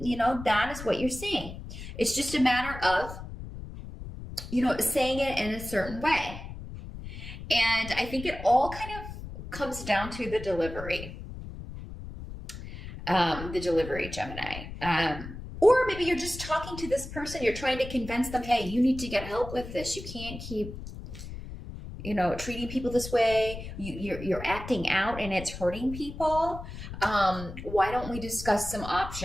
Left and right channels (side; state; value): left; noise; rumble, 11 dB below the sound